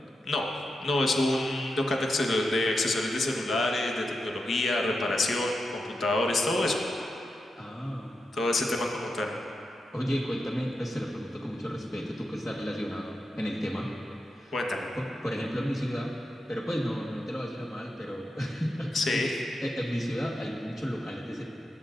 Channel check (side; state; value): both; normal; correlation 0.88